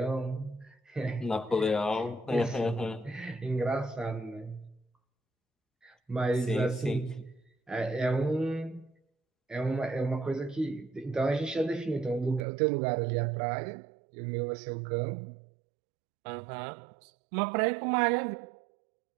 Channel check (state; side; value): drops out; left; at 12.5 s